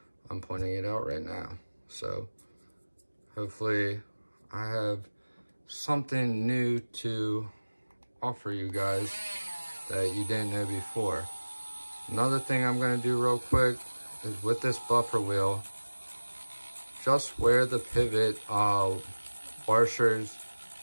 I'm pointing it out right now. So hopefully I have something new to offer you guys that you didn't know before. Another thing I'm gonna do real quick is with this buffer wheel, just where the pivot washers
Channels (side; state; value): both; inverted; correlation -1.00